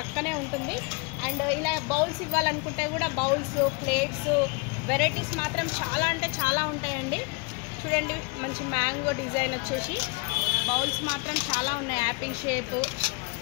ఉంటుంది. అండ్ ఇలా బౌల్స్ ఇవ్వాలనుకుంటే కూడా బౌల్స్, ప్లేట్స్ వెరైటీస్ మాత్రం చాలా ఉంటాయండి. చూడండి మంచి మ్యాంగో డిజైన్ వచ్చేసి బౌల్స్ మాత్రం చాలా ఉన్నాయి. యాపిల్ షేప్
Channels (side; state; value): right; quieter; 30.0 dB